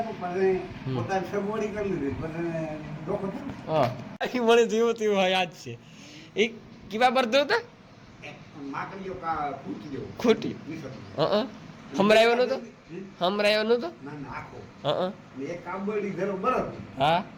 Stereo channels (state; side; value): identical; both; correlation 1.00